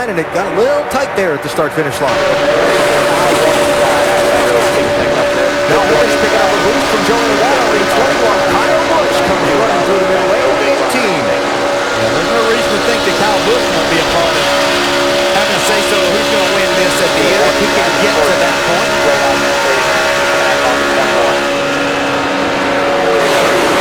and it got a little tight there at the start-finish line. Now Hornish picking up a boost from Joey Logano in 21. Kyle Busch comes running through the middle lane in 18. There's no reason to think that Kyle Busch won't be a part of having to say so who's going to win this at the end if he can get to that point.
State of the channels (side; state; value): both; identical; correlation 1.00